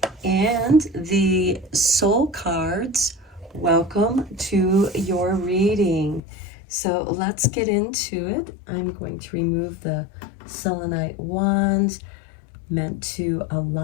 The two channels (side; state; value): right; drops out; at 6.2 s